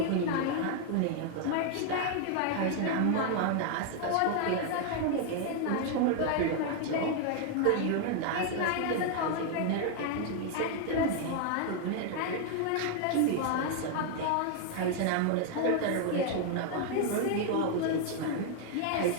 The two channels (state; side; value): different; both; correlation 0.00